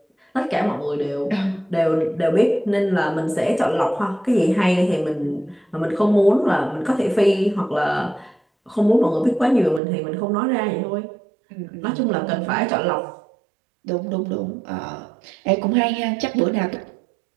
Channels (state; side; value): drops out; left; at 9.8 s